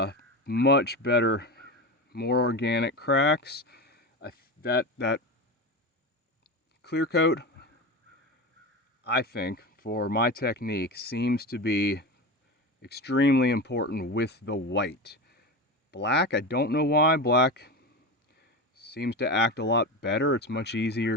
Much better, more organic cracks. That clear coat, I think, for my technique, seems to be extremely important with the white. Black, I don't know why. Black seems to act a lot better. It's much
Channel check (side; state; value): both; normal; correlation 0.23